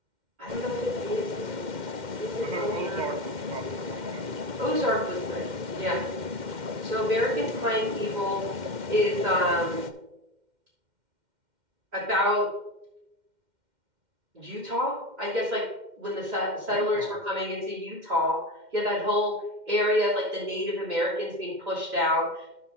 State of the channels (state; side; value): late; left; 2.1 ms